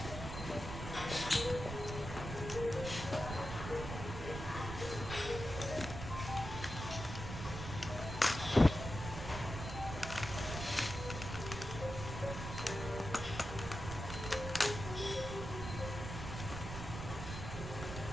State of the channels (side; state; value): right; noise; rumble, 7 dB below the sound